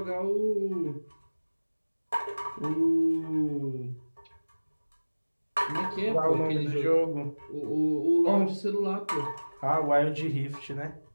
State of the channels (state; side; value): inverted; both; correlation -1.00